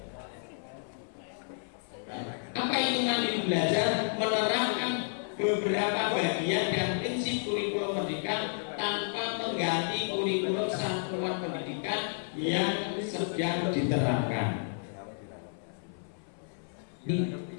Apa itu mandiri belajar? Menerapkan beberapa bagian dan prinsip kurikulum merdeka tanpa mengganti kurikulum satuan pendidikan yang sedang diterapkan. Ini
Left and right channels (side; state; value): right; silent; 57 dB below the other